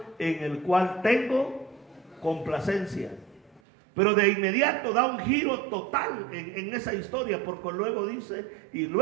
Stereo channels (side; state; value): left; drops out; at 3.6 s